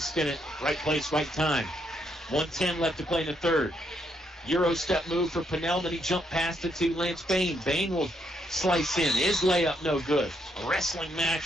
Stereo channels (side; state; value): both; normal; correlation 0.75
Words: Right place, right time. 1:10 left to play in the third. Euro step move for Pennell, then he jumped past it to Lance Bain. Bain will slice in. His layup no good. A wrestling match